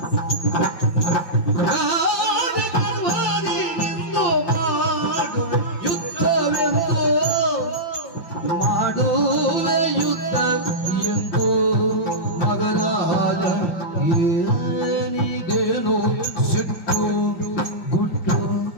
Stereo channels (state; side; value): late; right; 5.7 ms